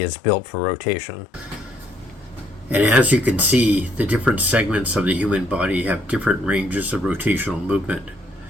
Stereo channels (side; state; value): both; normal; correlation 0.68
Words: is built for rotation. And as you can see, the different segments of the human body have different ranges of rotational movement.